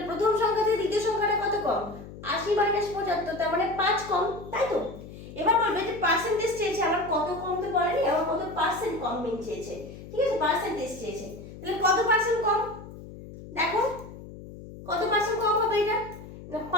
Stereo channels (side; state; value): left; noise; hum, 14 dB below the sound